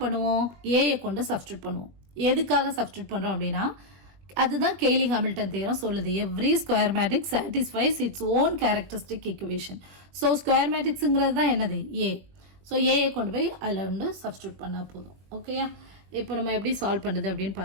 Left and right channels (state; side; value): late; left; 21 ms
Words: பண்ணுவோம்? ஏயை கொண்டு சப்ஸ்டியூட் பண்ணுவோம். எதுக்காக சப்ஸ்டியூட் பண்ணுறோம் அப்படின்னா அதுதான் கெய்லி ஹாமில்டன் தியரம் சொல்லுது. Every square matrix satisfies its own characteristic equation. So square மேட்ரிக்ஸுங்கிறது தான் என்னது? ஏ. ஸோ ஏயை கொண்டு போய் அதில் வந்து சப்ஸ்டியூட் பண்ணால் போதும். ஓகேயா? இப்போ நம்ம எப்படி சால்வ் பண்ணுறது அப்படின்னு